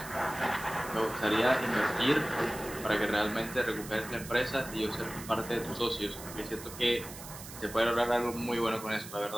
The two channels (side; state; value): right; noise; hiss, 13 dB below the sound